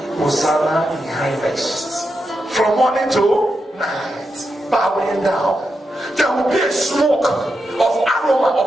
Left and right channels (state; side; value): normal; both; correlation 0.86